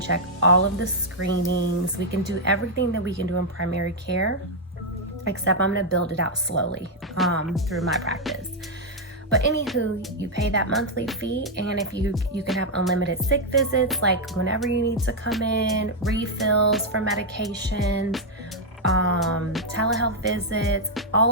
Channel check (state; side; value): normal; both; correlation -0.02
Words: all of the screenings. We can do everything that we can do in primary care, except I'm gonna build it out slowly through my practice. But anywho, you pay that monthly fee, and if you can have unlimited sick visits, like whenever you need to come in, refills for medications, telehealth visits, all